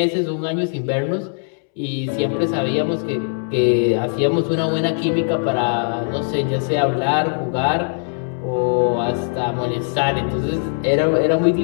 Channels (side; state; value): right; silent; 66 dB below the other